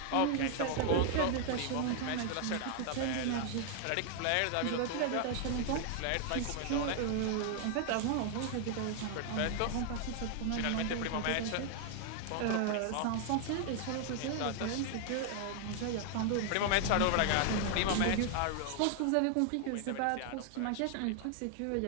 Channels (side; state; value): both; different; correlation 0.00